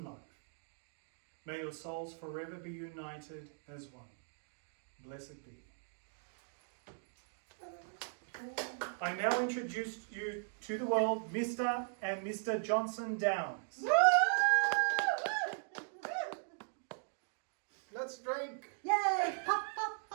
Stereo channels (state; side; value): silent; left; digital silence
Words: life. May your souls forever be united as one. Blessed be. I now introduce you to the world, Mr. and Mr. Johnson Downs. Let's drink.